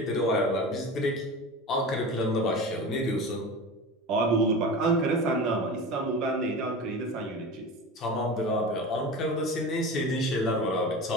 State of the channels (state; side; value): normal; both; correlation 0.31